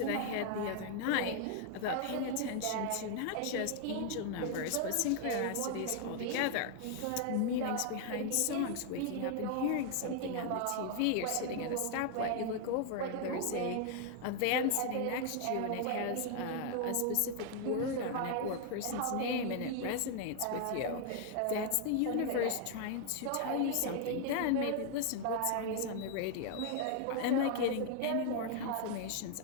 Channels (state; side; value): different; both; correlation 0.00